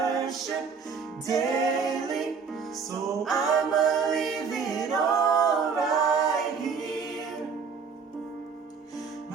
daily. So I'ma leave it all right here.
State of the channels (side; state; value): left; quieter; 5.7 dB